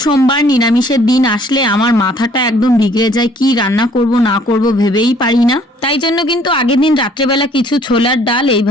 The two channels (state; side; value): normal; both; correlation 0.59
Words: সোমবার নিরামিষের দিন আসলে আমার মাথাটা একদম বিগড়ে যায়, কি রান্না করব না করব ভেবেই পারি না। তাই জন্য কিন্তু আগের দিন রাত্রেবেলা কিছু ছোলার ডাল